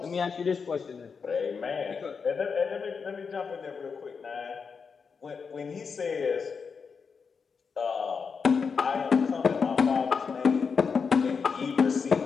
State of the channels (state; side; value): quieter; right; 5.6 dB